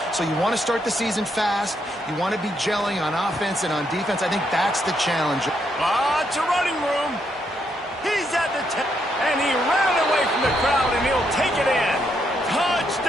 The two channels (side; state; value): both; normal; correlation 0.77